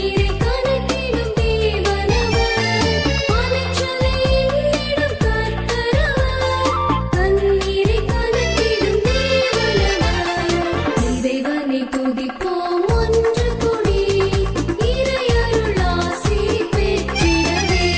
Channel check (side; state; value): both; identical; correlation 1.00